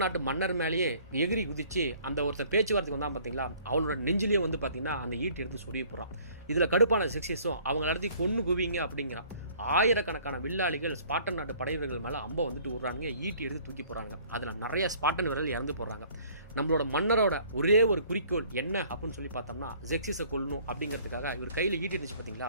நாட்டு மன்னர் மேலேயே எகிரி குதிச்சு அந்த ஒருத்தன் பேச்சுவார்த்தைக்கு வந்தான் பார்த்தீங்களா, அவனோட நெஞ்சிலையும் வந்து பார்த்தீங்கன்னா அந்த ஈட்டி எடுத்து சொரிய போகிறான். இதில் கடுப்பான ஜெக்சிஸும் அவங்க நடத்தி கொண்டு குவிங்க அப்படிங்கிறான். ஆயிரக்கணக்கான வில்லாளிகள் ஸ்பார்டன் நாட்டு படைவீரர்கள் மேலே அம்பை வந்துட்டு விடுறாங்க, ஈட்டி எடுத்து தூக்கி போகிறாங்க. அதில் நிறைய ஸ்பார்டன் வீரர்கள் இறந்து போகிறாங்க. நம்மளோட மன்னரோட ஒரே ஒரு குறிக்கோள் என்ன அப்படின்னு சொல்லி பார்த்தோம்னா, ஜெக்சிஸை கொல்லணும் அப்படிங்கிறதுக்காக இவர் கையில் ஈட்டி இருந்துச்சு பார்த்தீங்களா,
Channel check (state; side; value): inverted; both; correlation -0.55